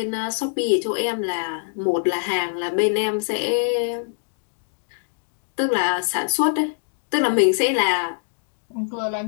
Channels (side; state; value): right; silent; digital silence